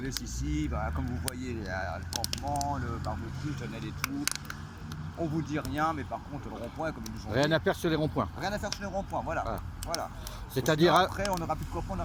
laisse ici, bah, comme vous voyez, le campement, le barbecue, le tunnel et tout. On vous dit rien, mais par contre le rond-point, comme ils nous ont dit... Rien à faire sur les ronds-points. Rien à faire sur les ronds-points, voilà. C'est-à-dire... Après, on n'aura plus de copains, on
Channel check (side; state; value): both; identical; correlation 1.00